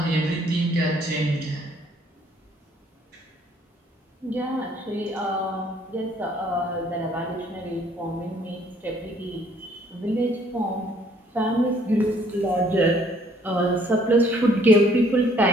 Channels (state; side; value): normal; both; correlation 0.62